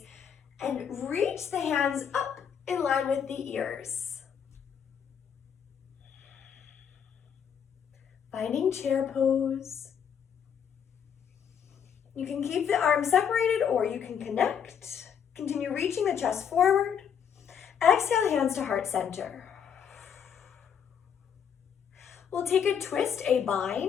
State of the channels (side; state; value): right; quieter; 7.9 dB